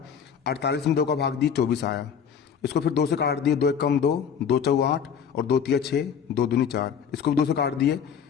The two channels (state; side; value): quieter; right; 7.4 dB